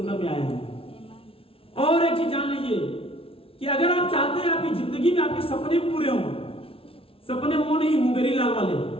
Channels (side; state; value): right; late; 0.26 ms